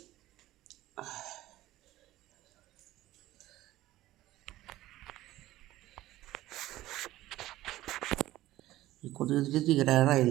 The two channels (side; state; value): left; quieter; 15.7 dB